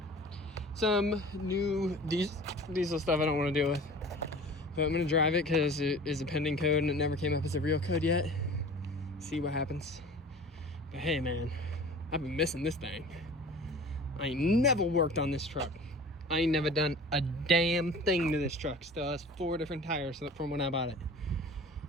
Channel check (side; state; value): both; normal; correlation 0.42